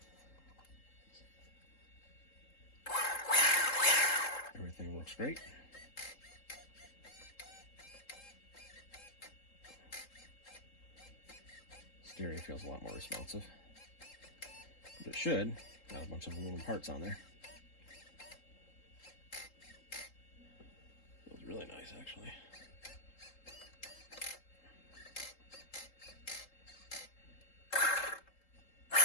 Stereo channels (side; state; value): right; late; 3.8 ms